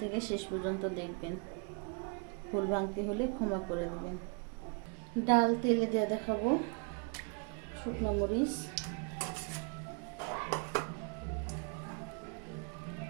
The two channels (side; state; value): left; quieter; 35.7 dB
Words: থেকে শেষ পর্যন্ত দেখবেন, ভুল ভাঙতি হলে ক্ষমা করে দেবেন। ডাল তেলে দিয়ে দেখাবো, শুকনো মরিচ,